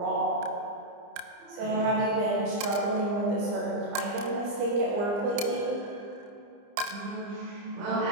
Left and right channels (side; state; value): left; late; 29 ms